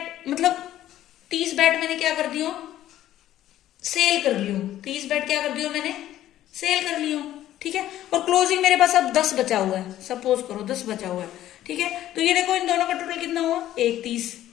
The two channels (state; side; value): quieter; right; 13.1 dB